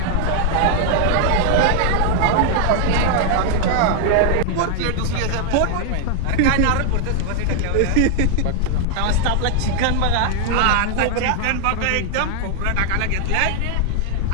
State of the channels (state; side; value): different; both; correlation 0.00